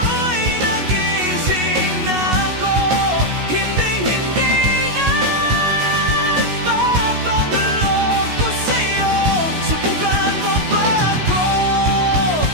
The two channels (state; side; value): late; left; 16 ms